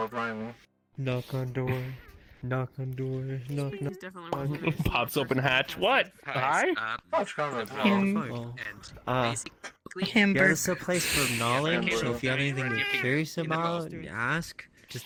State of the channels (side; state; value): both; identical; correlation 1.00